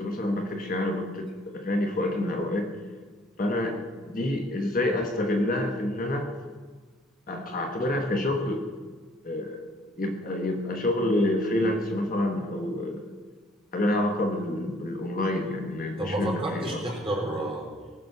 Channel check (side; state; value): both; normal; correlation 0.60